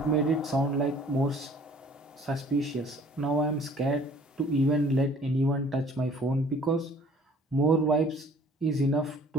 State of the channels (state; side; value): normal; both; correlation 0.54